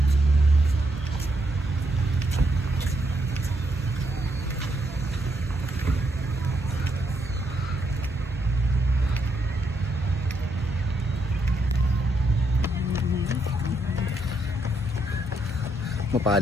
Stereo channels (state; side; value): normal; both; correlation 0.77